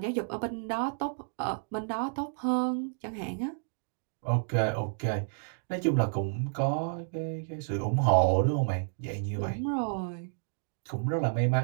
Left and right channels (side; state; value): left; silent; digital silence